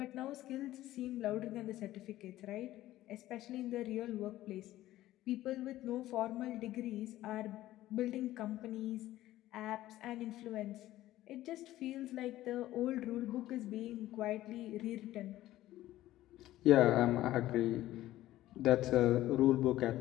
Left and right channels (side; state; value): right; quieter; 15.0 dB